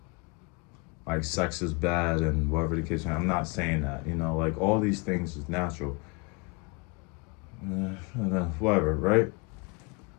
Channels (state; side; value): quieter; right; 30.2 dB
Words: like sex is bad and whatever the case. I'm not saying that, you know, like all these things is natural. Whatever, right?